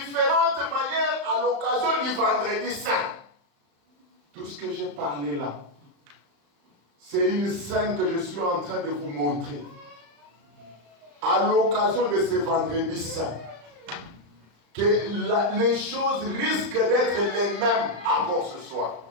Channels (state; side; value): late; left; 35 ms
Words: manières à l'occasion du vendredi saint. Tout ce que j'ai parlé là, c'est une scène que je suis en train de vous montrer. À l'occasion de ce vendredi saint, que les choses risquent d'être les mêmes encore ce soir.